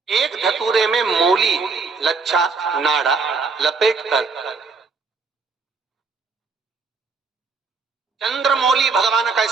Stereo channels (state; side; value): quieter; left; 4.6 dB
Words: एक धतूरे में मूली, लच्छा, नाड़ा लपेटकर, चंद्रमौली भगवान का